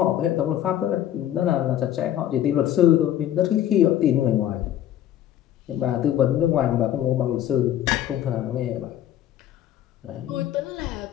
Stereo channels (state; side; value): quieter; right; 11.6 dB